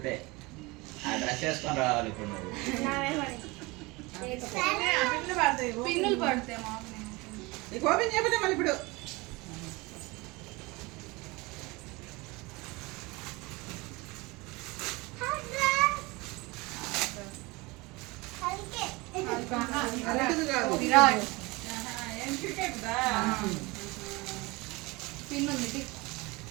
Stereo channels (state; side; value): quieter; left; 23.9 dB